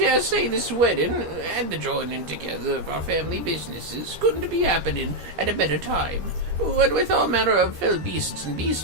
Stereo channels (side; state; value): left; late; 13 ms